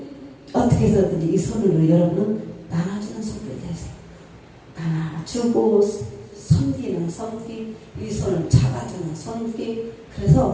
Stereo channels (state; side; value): identical; both; correlation 1.00